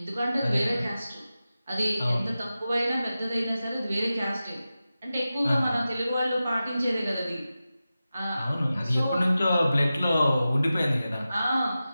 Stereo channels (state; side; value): inverted; both; correlation -0.94